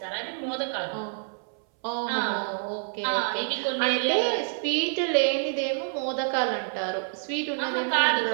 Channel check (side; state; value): left; silent; 60 dB below the other